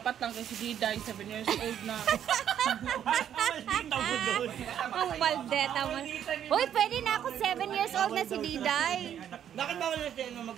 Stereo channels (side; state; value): left; quieter; 9.7 dB